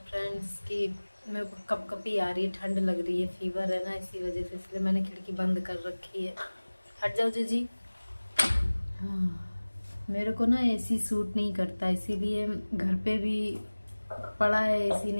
फ्रेंड्स, कि मेरे को कपकपी आ रही है, ठंड लग रही है, फीवर है ना, इसी वजह से, इसलिए मैंने खिड़की बंद कर रखी है। हट जाओ जीजी। हाँ, मेरे को ना एसी सूट नहीं करता, इसीलिए घर पे भी पड़ा है एसी,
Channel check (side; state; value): both; inverted; correlation -1.00